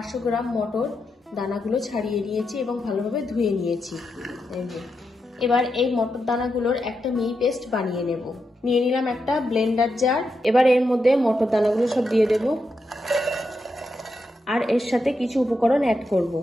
গ্রাম মটর, দানাগুলো ছাড়িয়ে নিয়েছি এবং ভালোভাবে ধুয়ে নিয়েছি। এবার এই মটর দানাগুলোর একটা মিহি পেস্ট বানিয়ে নেব। নিয়ে নিলাম একটা ব্লেন্ডার জার। এবার এর মধ্যে মটর দানাগুলো সব দিয়ে দেব, আর এর সাথে কিছু উপকরণ অ্যাড করব।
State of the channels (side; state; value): both; normal; correlation 0.85